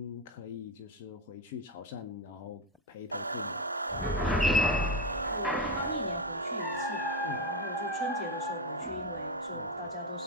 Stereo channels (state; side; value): normal; both; correlation 0.12